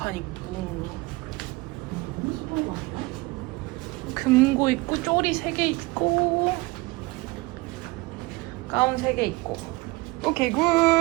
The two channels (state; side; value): quieter; left; 23.0 dB